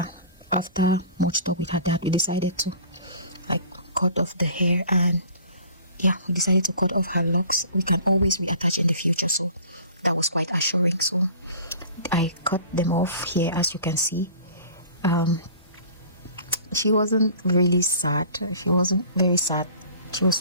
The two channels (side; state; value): both; inverted; correlation -0.45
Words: After much talk with her dad, we decided to like cut off the hair, and yeah, we decided to cut off her locks. We can always reattach in the future, so that was quite assuring. So I cut them off here, as you can see. She wasn't really sad. She wasn't very sad. She was